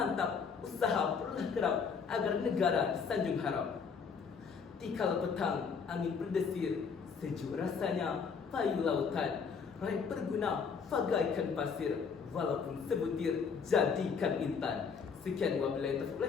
usaha perlulah kerap agar negara disanjung harap. Tikal petang, angin berdesir, sejuk rasanya payu lautan. Raih berguna, bagaikan pasir, walaupun sebutir, jadikan intan. Sekian wabillahi taufiq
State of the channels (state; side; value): quieter; right; 5.9 dB